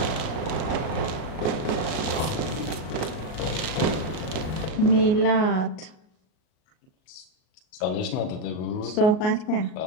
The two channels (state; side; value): late; right; 38 ms